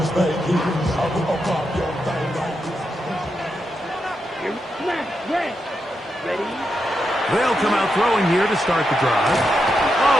They'll come out throwing here to start the drive. Oh,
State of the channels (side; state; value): both; normal; correlation 0.85